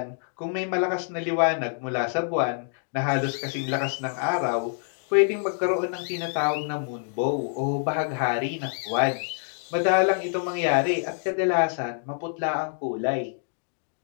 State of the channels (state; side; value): silent; right; 61 dB below the other